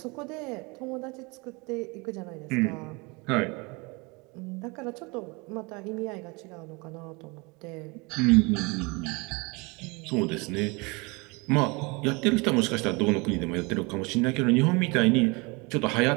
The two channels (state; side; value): quieter; left; 27.6 dB